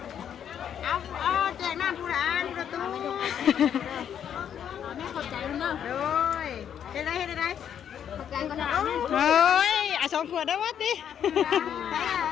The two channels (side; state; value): right; quieter; 9.0 dB